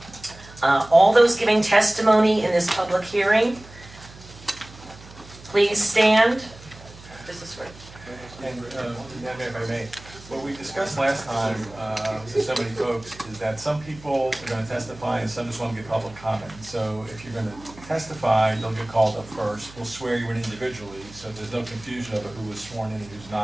All those giving testimony in this public hearing, please stand. This is for... And, if I may, what we discussed last time with so many folks is that some people are going to testify and some just want to give public comment. So if you're going to testify, you'll get called up first. We'll swear you in individually, so there's no confusion over who was sworn in and who's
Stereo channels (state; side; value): noise; right; hum, 20 dB below the sound